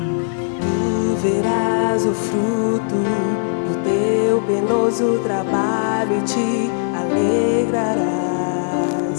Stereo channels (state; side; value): silent; right; 65 dB below the other